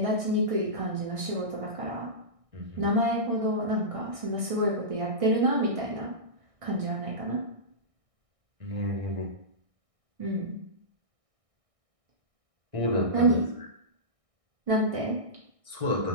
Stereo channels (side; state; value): left; late; 1.6 ms